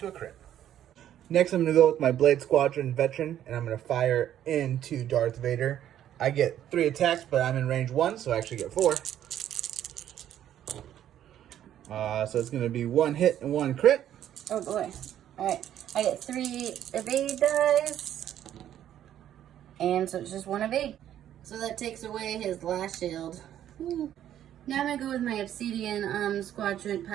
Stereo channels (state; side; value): quieter; left; 11.1 dB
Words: a crit. Next, I'm going to go with my Blade Squadron Veteran, and I'm going to fire into Darth Vader. I get 3 attacks, but I'm in range 1, so I actually get 4. So it's going to be 1 hit and 1 crit. Oh boy. Alright, I get 3 evade dice. And so it's just 1 evade. So that takes away his last shield. Now I'm going to go with my Obsidian Squadron